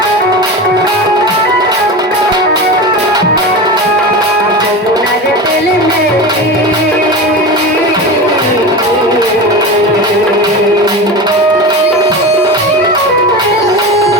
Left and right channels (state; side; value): normal; both; correlation 0.26